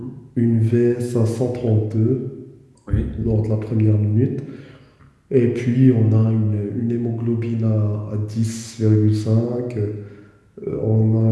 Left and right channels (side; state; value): both; identical; correlation 1.00